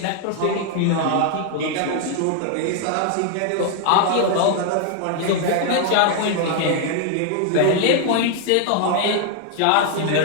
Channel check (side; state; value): both; different; correlation 0.00